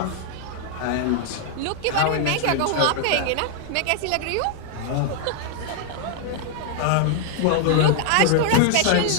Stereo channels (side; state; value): both; different; correlation 0.00